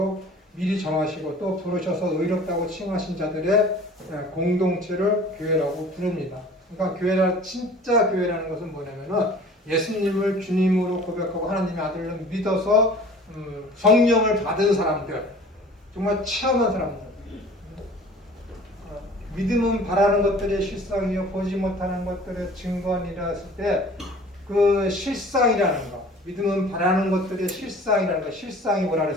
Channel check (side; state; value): both; normal; correlation 0.46